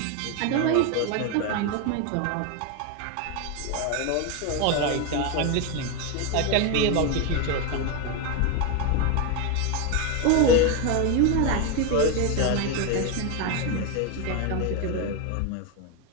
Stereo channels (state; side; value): different; both; correlation 0.02